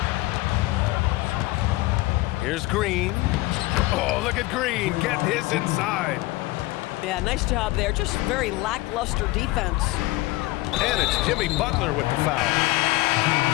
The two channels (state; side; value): quieter; right; 19.9 dB